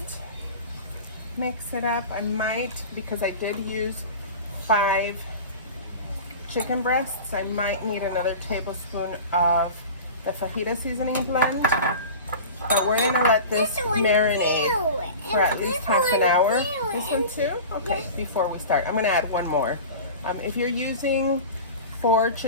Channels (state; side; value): inverted; both; correlation -0.34